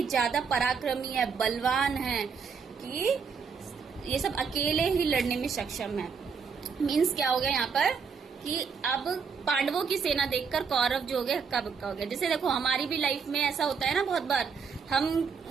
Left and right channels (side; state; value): left; quieter; 5.9 dB